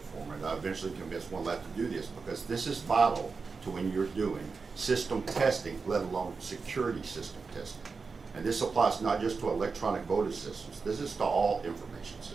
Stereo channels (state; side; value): quieter; left; 4.7 dB